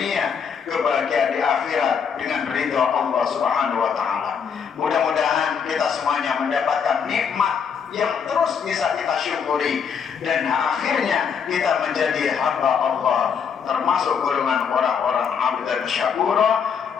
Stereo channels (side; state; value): right; quieter; 6.9 dB